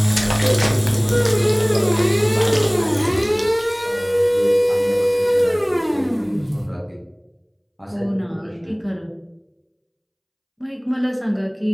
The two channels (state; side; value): identical; both; correlation 1.00